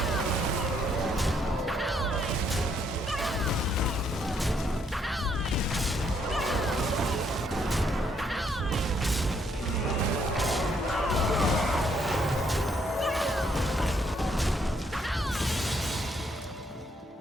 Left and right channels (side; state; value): both; normal; correlation 0.71